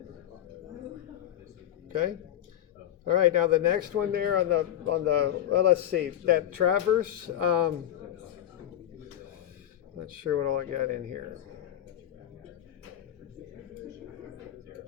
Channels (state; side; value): quieter; right; 11.6 dB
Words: Okay. All right, now the next one there on the well, let's see, that traverse, not sure what all I got in here.